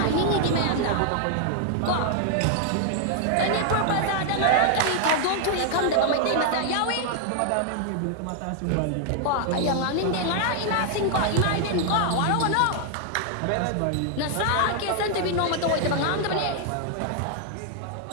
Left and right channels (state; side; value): different; both; correlation 0.00